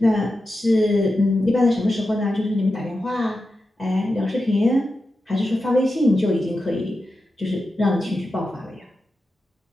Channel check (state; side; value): normal; both; correlation 0.90